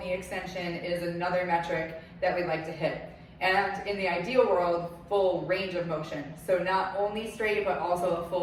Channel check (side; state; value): both; identical; correlation 1.00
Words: extension is another metric that we'd like to hit. And in the ideal world, full range of motion. So not only straight, but also a